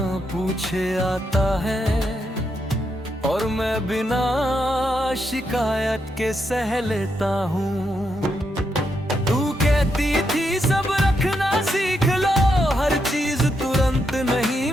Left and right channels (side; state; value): both; normal; correlation 0.81